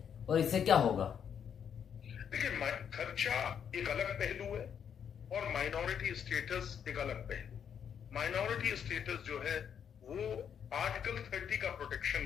और इससे क्या होगा? देखिए, खर्चा एक अलग पहलू है और माइनॉरिटी स्टेटस एक अलग पहलू। माइनॉरिटी स्टेटस जो है वो आर्टिकल 30 का प्रोटेक्शन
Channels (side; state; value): right; quieter; 8.0 dB